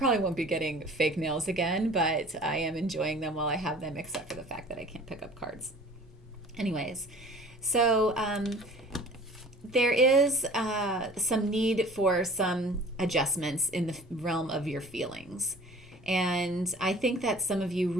won't be getting fake nails again, but I am enjoying them while I have them, except for the fact that I can't pick up cards. Anyways, so there is some need for some adjustments in the realm of your feelings. And I think that some of you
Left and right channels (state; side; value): normal; both; correlation 0.46